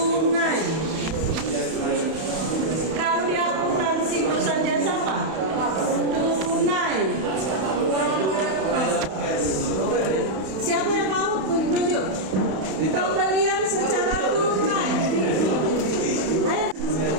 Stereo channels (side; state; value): left; late; 31 ms